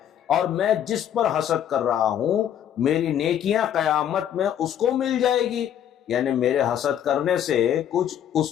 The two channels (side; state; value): right; quieter; 10.0 dB